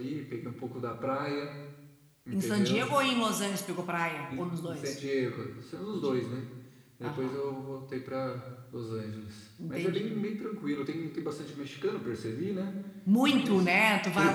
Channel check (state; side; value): identical; both; correlation 1.00